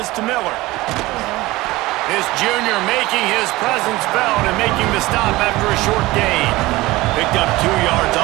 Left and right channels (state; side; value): quieter; left; 19.4 dB